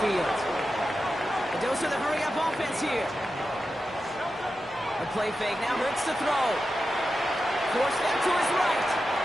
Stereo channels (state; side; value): normal; both; correlation 0.91